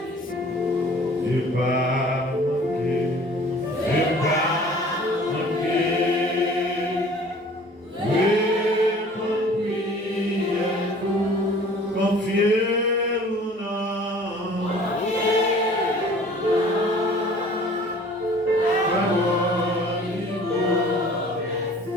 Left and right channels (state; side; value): normal; both; correlation 0.49